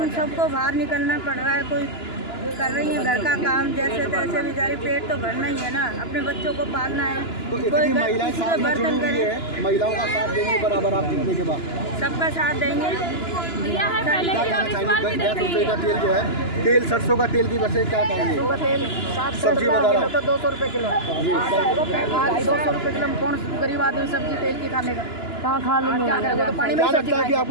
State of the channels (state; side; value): late; right; 2.9 ms